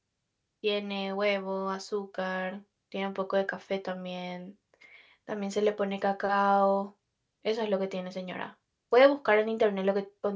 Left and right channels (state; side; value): identical; both; correlation 1.00